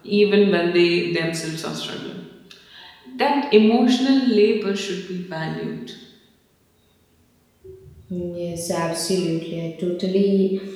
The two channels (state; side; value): identical; both; correlation 1.00